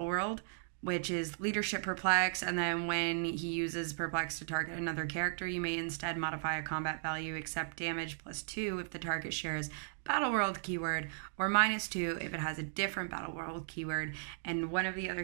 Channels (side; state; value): left; silent; digital silence